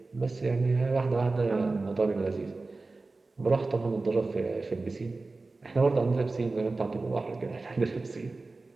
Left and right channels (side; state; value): left; quieter; 3.5 dB